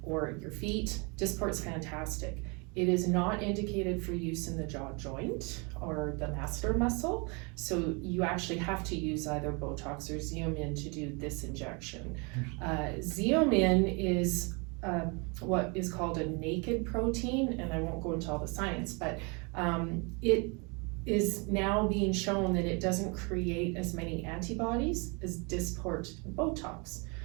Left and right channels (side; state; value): left; quieter; 31.3 dB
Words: or your feet. Dysport's fantastic. It is not indicated for use in the jaw joint or the masseter muscle. So you actually have to use either Botox or Xeomin to do this injection. Xeomin is what is called a naked protein, and I won't go into all the science, but it is now being shown that it doesn't create as many antibodies as Dysport and Botox.